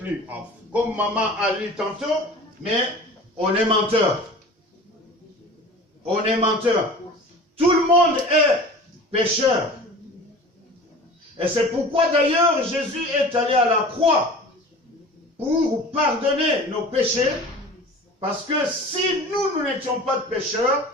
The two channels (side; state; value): both; normal; correlation 0.39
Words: Comme maman a lu tantôt, mais on est menteur. On est menteur. Tout le monde est pécheur. Et c'est pourquoi d'ailleurs Jésus est allé à la croix pour pardonner nos péchés, parce que si nous n'étions pas de pécheurs,